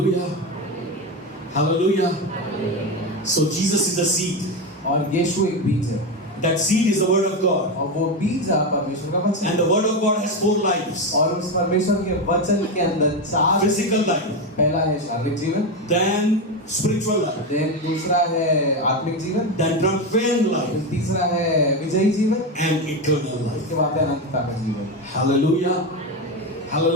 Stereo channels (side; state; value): both; normal; correlation 0.14